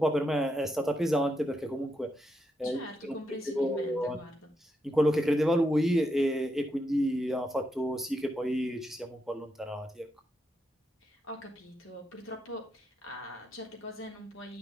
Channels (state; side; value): normal; both; correlation 0.82